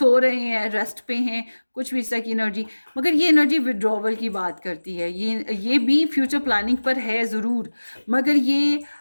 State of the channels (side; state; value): both; inverted; correlation -1.00